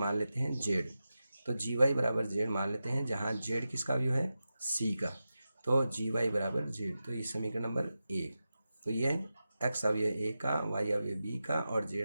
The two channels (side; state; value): both; inverted; correlation -0.92